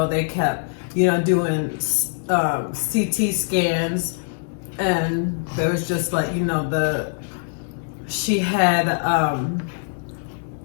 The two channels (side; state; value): right; silent; 62 dB below the other